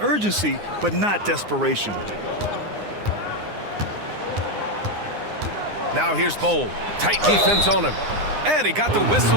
but not desperation. Now here's Bowl. Tight defense on him. And he got the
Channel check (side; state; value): left; late; 9.7 ms